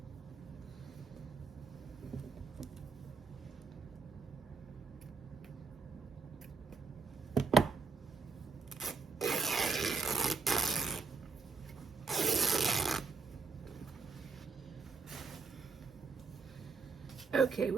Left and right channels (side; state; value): left; quieter; 4.8 dB